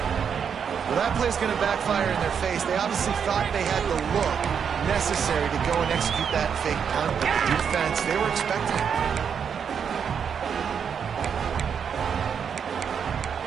Well, that play's going to backfire in their face. They obviously thought they had the look necessary to go and execute that fake punt, but the defense, they were expecting it.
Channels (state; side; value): quieter; left; 7.2 dB